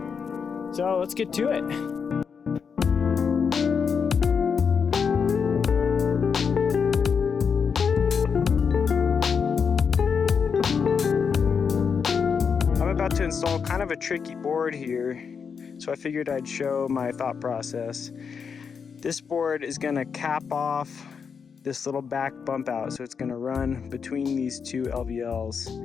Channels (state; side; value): quieter; right; 6.2 dB